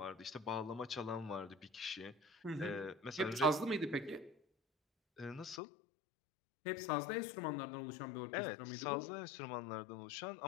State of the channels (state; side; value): drops out; right; at 5.6 s